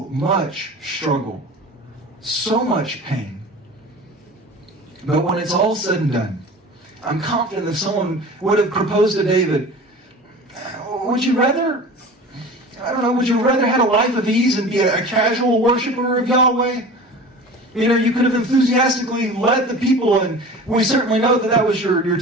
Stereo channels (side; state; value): both; normal; correlation 0.38